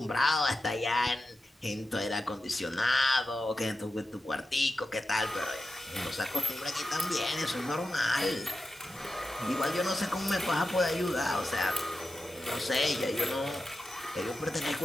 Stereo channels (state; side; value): normal; both; correlation 0.92